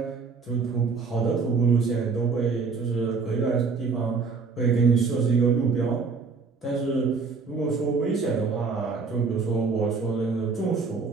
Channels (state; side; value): quieter; left; 4.8 dB